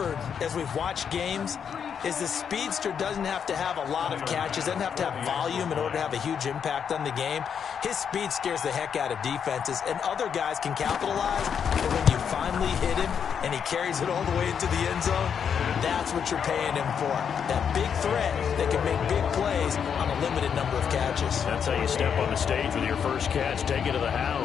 as we've watched games is the speedster doesn't have to have a lot of catches, doesn't have to have volume in order to have a huge impact on the game. His speed scares the heck out of defenses, and other guys can capitalize. But when you finally hit him and he carries it all the way into the end zone, that's what you're paying him for. That big threat that can make big plays on a limited number of catches. That's how you step on the stage with your first catch, take it to the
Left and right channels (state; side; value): quieter; right; 7.4 dB